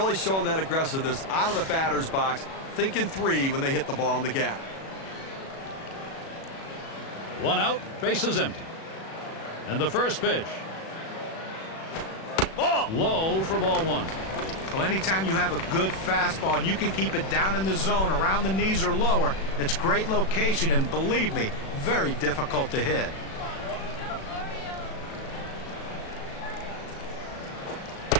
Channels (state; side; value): late; right; 37 ms